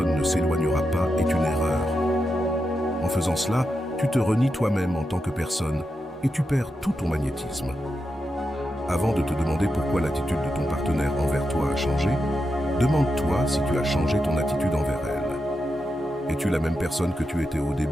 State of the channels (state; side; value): normal; both; correlation 0.87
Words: ne s'éloignera pas est une erreur. En faisant cela, tu te renies toi-même en tant que personne et tu perds tout ton magnétisme. Avant de te demander pourquoi l'attitude de ton partenaire envers toi a changé, demande-toi si tu as changé ton attitude envers elle. Es-tu la même personne que tu étais au